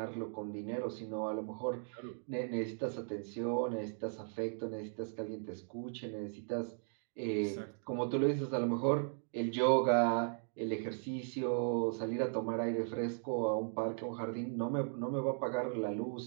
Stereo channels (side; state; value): left; silent; digital silence